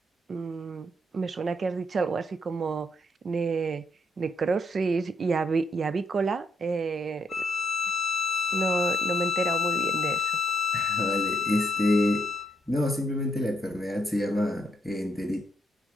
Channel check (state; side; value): normal; both; correlation 0.75